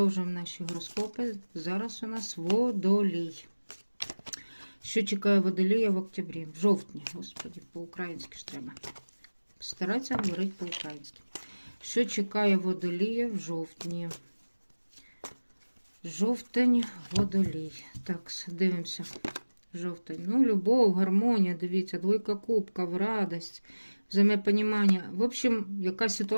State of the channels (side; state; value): both; inverted; correlation -1.00